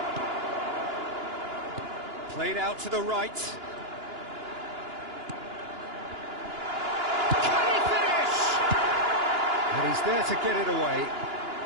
Played out to the right. Can he finish? And he's there to get it away.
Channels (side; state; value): left; late; 2.9 ms